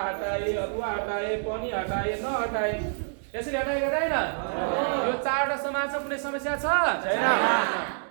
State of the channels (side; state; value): left; silent; digital silence